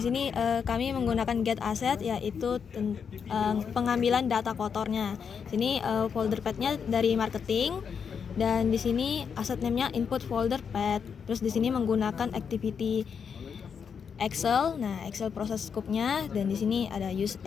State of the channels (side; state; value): right; quieter; 6.7 dB